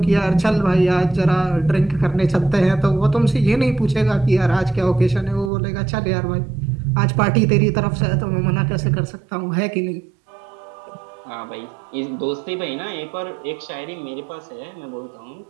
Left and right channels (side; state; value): left; drops out; at 5.5 s